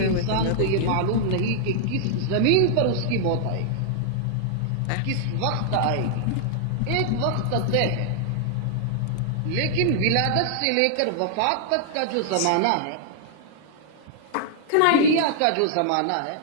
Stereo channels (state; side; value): different; both; correlation -0.01